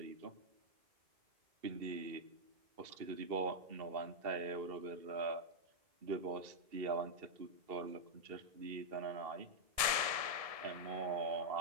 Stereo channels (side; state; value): left; late; 1.7 ms